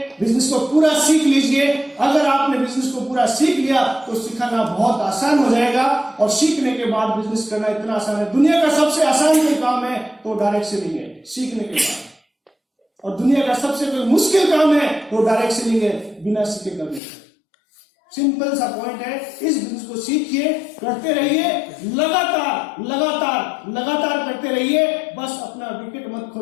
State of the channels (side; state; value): right; drops out; at 17.0 s